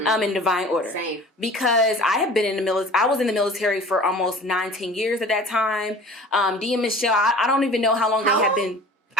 divine order. Same. Because I have been in the military. I was in the military for almost 19 years at that time. Dee and Michelle, I don't even know how long they have been.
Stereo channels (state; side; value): normal; both; correlation 0.43